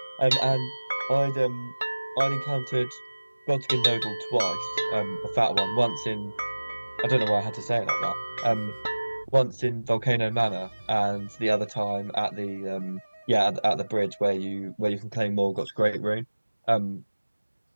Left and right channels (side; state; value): both; inverted; correlation -1.00